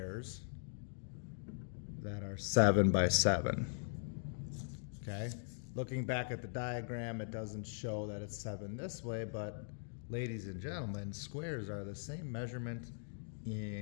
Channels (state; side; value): silent; right; digital silence